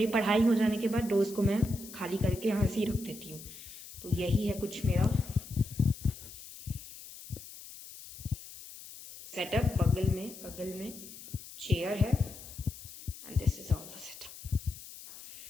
पढ़ाई हो जाने के बाद रोज़ को मैं खाली करके यहाँ से ही रख देती हूँ। तो यही है कुछ मेरा सेटअप। बगल में चेयर है and this is all the setup.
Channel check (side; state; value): left; noise; hiss, 15 dB below the sound